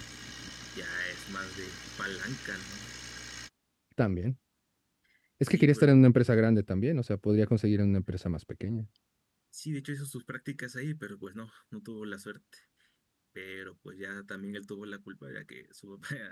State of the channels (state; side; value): identical; both; correlation 1.00